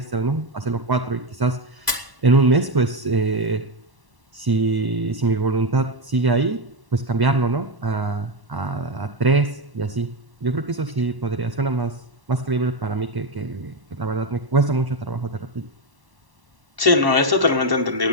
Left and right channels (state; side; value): late; left; 1.1 ms